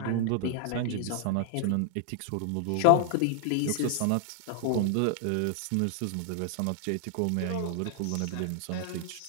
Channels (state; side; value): different; both; correlation 0.00